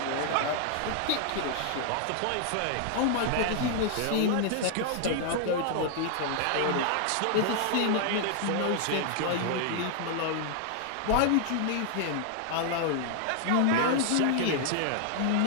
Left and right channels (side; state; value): both; different; correlation 0.00